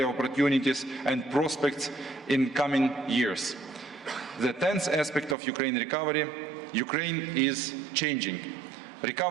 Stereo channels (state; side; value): drops out; left; at 5.4 s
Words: opportunities and prospects in coming years. The 10th aspect of Ukraine recovery, Ukraine is changing.